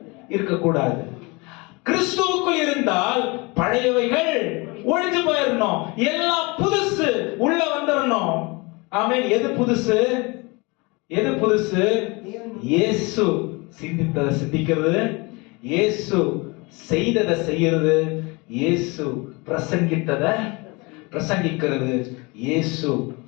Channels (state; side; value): quieter; right; 26.9 dB